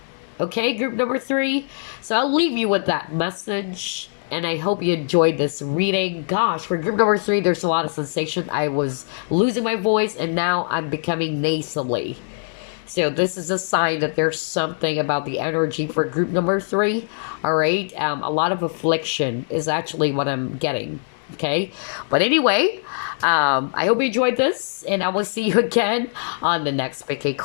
Okay, group number 3. So I'll leave you with that message. And I hope you enjoyed this reading. Gosh, for group number 3, there's a lot of sensation. I was losing my voice and now I'm becoming nasally. So this is a sign that there's something about the energy for group number 3. All right. A lot of affliction is actually what I'm getting. Okay. But anyway, I hope you enjoyed this and I will see you again on the next PK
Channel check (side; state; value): right; silent; 64 dB below the other